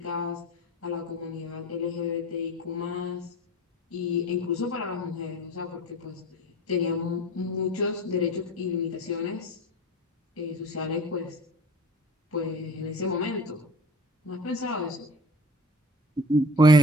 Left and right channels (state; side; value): normal; both; correlation 0.40